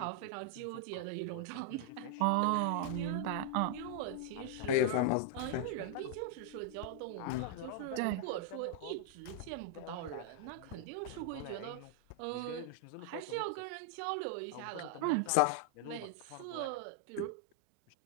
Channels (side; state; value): both; different; correlation -0.01